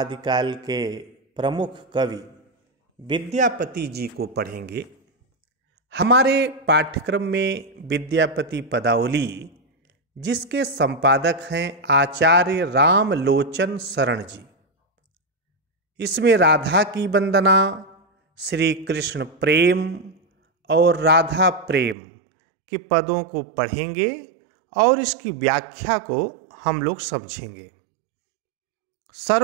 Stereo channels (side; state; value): left; drops out; at 22.0 s